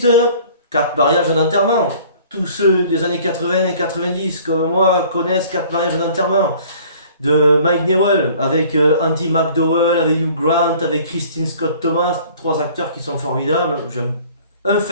4 mariages d'enterrement. Tous ceux des années 80 et 90 comme moi connaissent 4 mariages d'enterrement de Mike Newell avec Andy McDowell, avec Hugh Grant, avec Christine Scott Thomas, 3 acteurs qui sont formidables. J'aime un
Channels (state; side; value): inverted; both; correlation -0.51